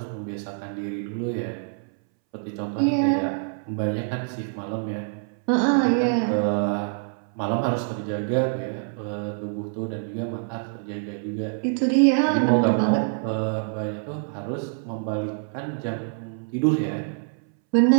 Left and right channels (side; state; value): left; silent; 61 dB below the other